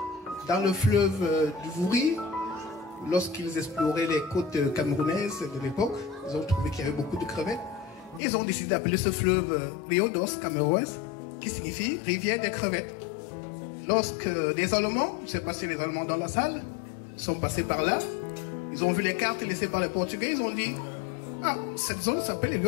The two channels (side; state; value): right; drops out; at 8.2 s